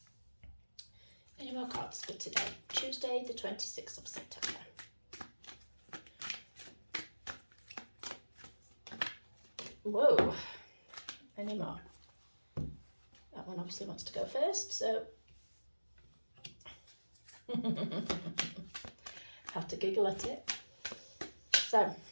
Any more cards for today, Tuesday, the 26th of September? Whoa, any more? That one obviously wants to go first, so have to giggle at it. So,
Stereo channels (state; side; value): inverted; both; correlation -1.00